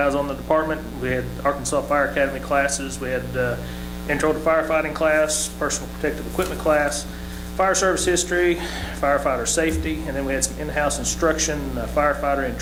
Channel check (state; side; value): identical; both; correlation 1.00